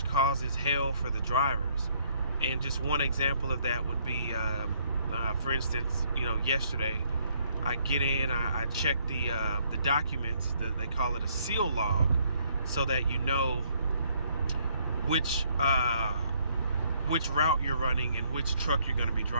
causes hell for the drivers. And just one example of that would be, for instance, yesterday I get in, I check the documents. They call it a seal log, so that you know which route you're running and which truck you're going to be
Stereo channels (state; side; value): inverted; both; correlation -0.67